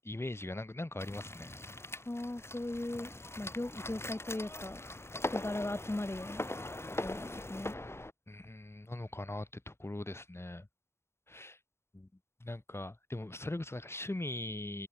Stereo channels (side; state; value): right; late; 0.12 ms